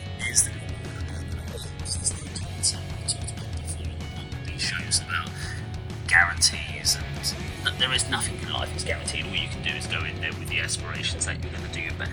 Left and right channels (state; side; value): identical; both; correlation 1.00